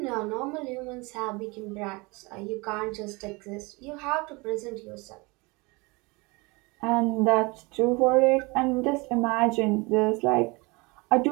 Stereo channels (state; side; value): quieter; left; 26.1 dB